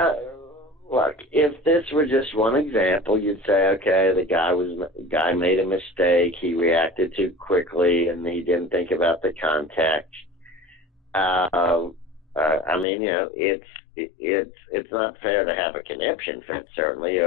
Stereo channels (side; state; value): right; drops out; at 12.9 s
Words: Look, if this were just one example, you'd say, okay, the guy made a mistake. He reacted too quickly, and he didn't think about the context. I mean, it's not fair to have a conniption fit, certainly,